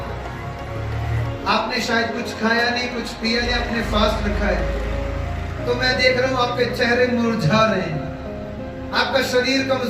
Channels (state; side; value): identical; both; correlation 1.00